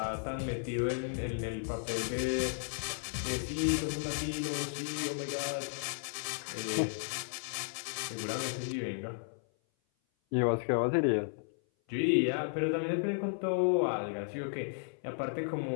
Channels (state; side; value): silent; right; 55 dB below the other